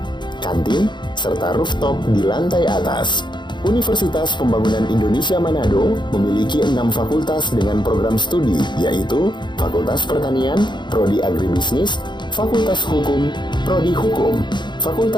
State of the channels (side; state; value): right; late; 0.22 ms